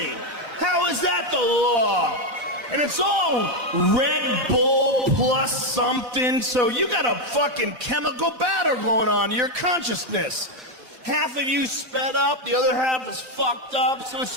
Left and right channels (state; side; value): late; left; 4.0 ms